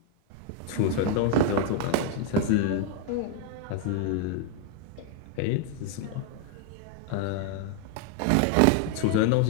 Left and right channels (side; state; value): both; different; correlation 0.00